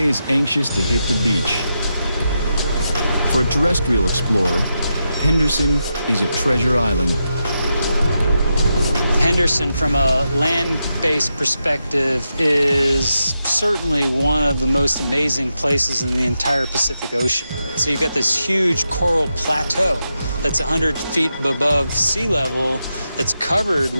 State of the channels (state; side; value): inverted; both; correlation -0.86